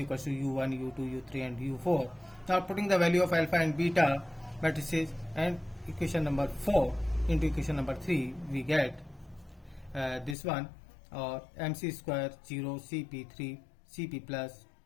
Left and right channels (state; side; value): drops out; right; at 10.4 s